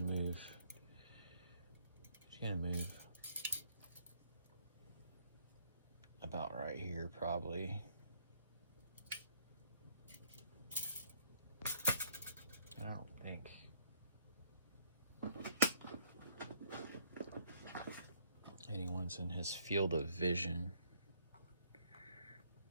move. He's gonna move about right here, probably. I don't think. Anyone's in his field of vision.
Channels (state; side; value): inverted; both; correlation -0.64